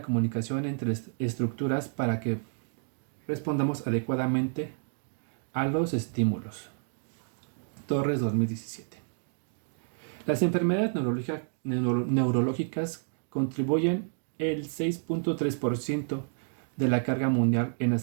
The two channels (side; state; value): left; silent; digital silence